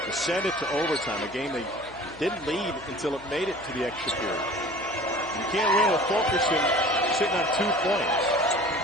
to send it to overtime, a game they didn't lead until it made it to the extra period. You can't win with Fulkerson sitting on 2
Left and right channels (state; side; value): noise; left; hum, 22 dB below the sound